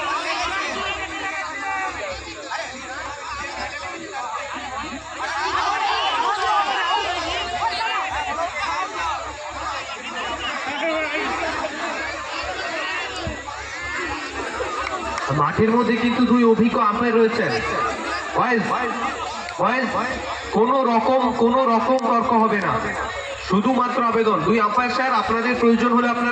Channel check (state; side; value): identical; both; correlation 1.00